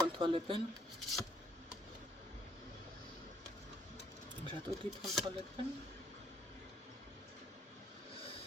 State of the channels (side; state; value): both; normal; correlation 0.67